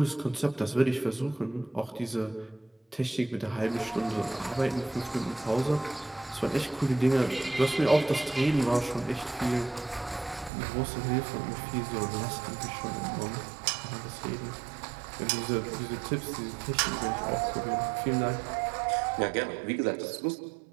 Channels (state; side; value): drops out; left; at 10.5 s